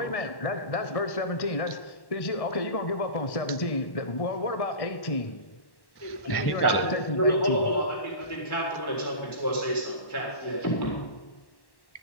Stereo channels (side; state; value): right; late; 1.1 ms